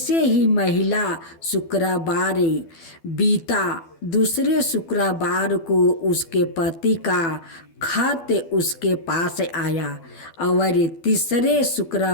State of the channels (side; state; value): right; late; 12 ms